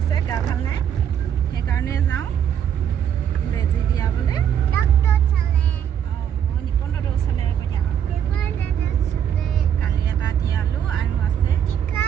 গা ভাল নাই সেইকাৰণে যাওঁ বেজি দিয়াবলৈ নিপন্দৰ ওচৰলৈ কালি এটা দিয়ালোঁ আৰু আছে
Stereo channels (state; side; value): quieter; left; 9.1 dB